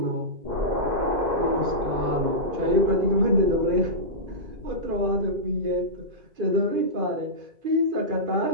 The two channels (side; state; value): left; late; 2.5 ms